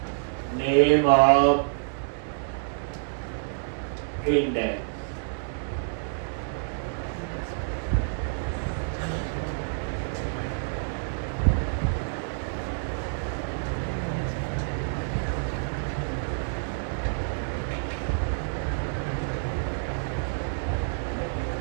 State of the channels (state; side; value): silent; left; 57 dB below the other